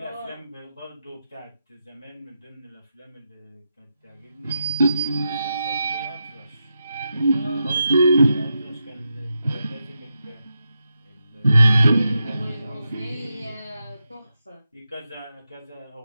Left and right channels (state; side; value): inverted; both; correlation -0.87